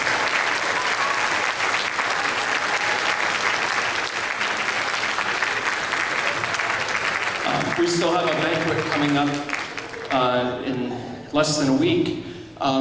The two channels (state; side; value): identical; both; correlation 1.00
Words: We still have a banquet coming up in less than a week,